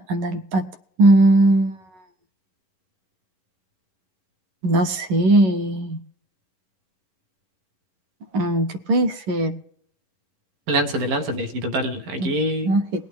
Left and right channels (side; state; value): left; late; 11 ms